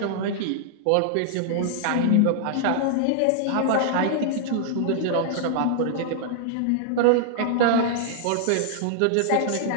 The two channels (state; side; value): different; both; correlation -0.01